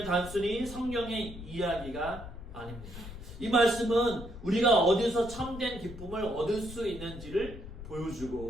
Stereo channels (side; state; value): left; noise; rumble, 12 dB below the sound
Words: 단순히 성경의 이야기가 아닙니다. 이 말씀은 우리가 어디서 참된 기쁨을 얻을 수 있는지를